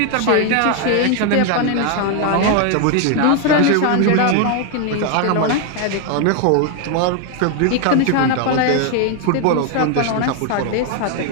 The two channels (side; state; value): both; different; correlation 0.01